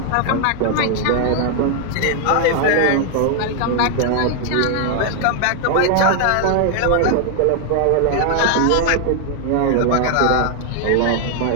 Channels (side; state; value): both; different; correlation 0.00